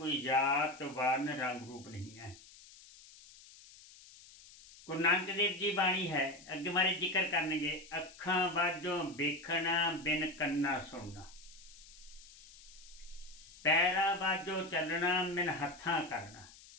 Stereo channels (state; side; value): noise; left; hiss, 20 dB below the sound